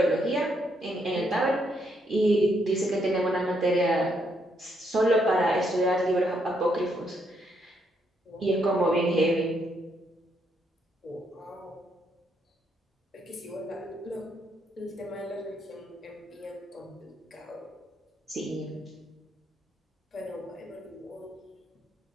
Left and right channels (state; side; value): normal; both; correlation 0.75